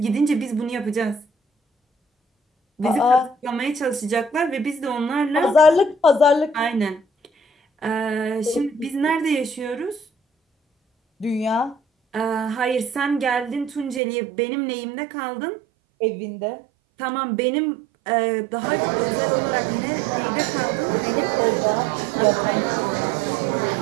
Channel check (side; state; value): left; drops out; at 14.0 s